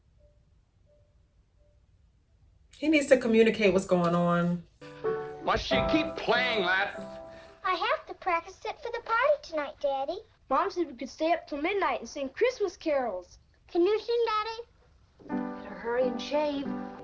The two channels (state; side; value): identical; both; correlation 1.00